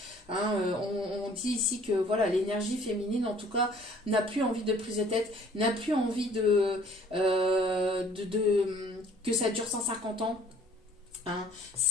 Hein. On dit ici que voilà, l'énergie féminine, en tout cas, n'a plus envie de prise de tête, n'a plus envie que ça dure 150 ans. Hein,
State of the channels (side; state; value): both; normal; correlation 0.55